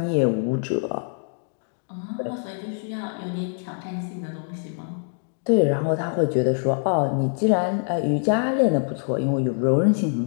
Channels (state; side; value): silent; right; digital silence